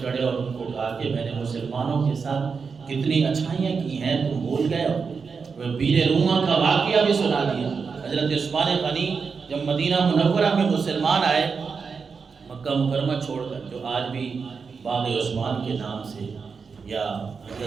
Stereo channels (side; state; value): left; quieter; 5.4 dB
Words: چڑھے اور ان کو کہا کہ میں نے مسلمانوں کے ساتھ کتنی اچھائیاں کی ہیں، تم بھول گئے ہو. بیر روما کا واقعہ بھی سنا دیا. حضرت عثمان غنی جب مدینہ منورہ میں مسلمان آئے، مکہ مکرمہ چھوڑ کر، جو آج بھی باغ عثمان کے نام سے یا